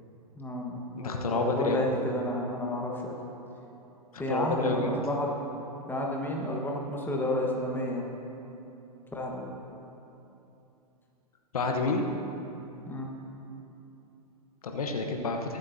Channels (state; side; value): normal; both; correlation 0.14